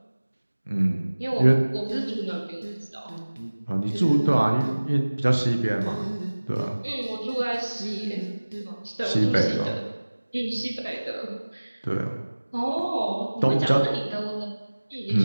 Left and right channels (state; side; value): inverted; both; correlation -1.00